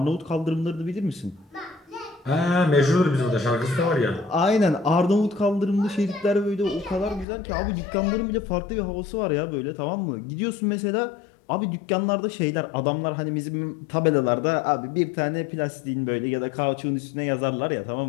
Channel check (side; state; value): right; drops out; at 7.2 s